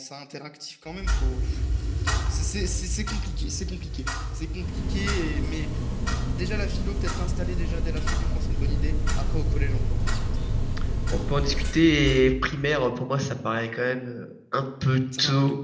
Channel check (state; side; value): identical; both; correlation 1.00